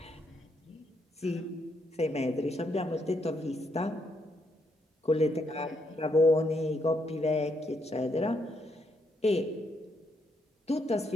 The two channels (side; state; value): both; normal; correlation 0.76